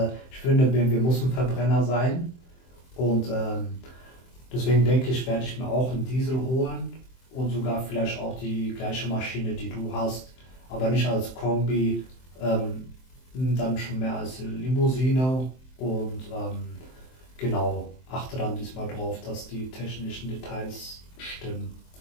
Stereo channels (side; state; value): right; late; 23 ms